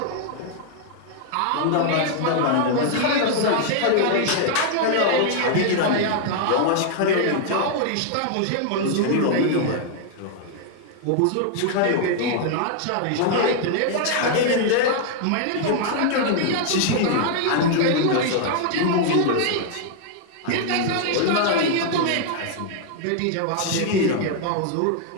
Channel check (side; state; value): both; different; correlation 0.00